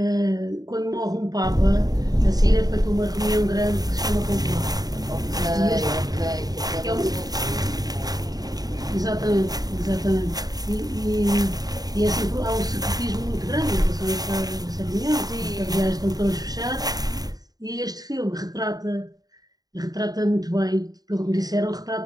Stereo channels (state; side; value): late; left; 0.18 ms